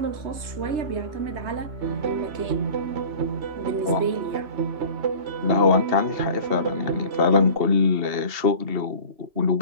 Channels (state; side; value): late; left; 3.3 ms